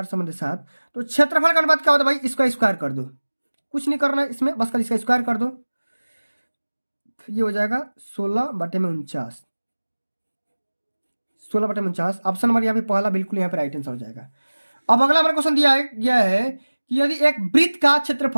समन्वय 7, तो क्षेत्रफल का अनुपात क्या होता है भाई, इसका स्क्वायर कर दो, कुछ नहीं करना है इसमें, बस कल इसका स्क्वायर कर दो, ये हो जाएगा 16 बटे में 49, 16 बटे में 49। ऑप्शन नंबर यहाँ पे पहला बिल्कुल यहाँ पे राइट आंसर हो जाएगा। अब अगला हमारा क्वेश्चन दिया गया है कि यदि एक वृत्त का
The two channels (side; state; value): both; inverted; correlation -1.00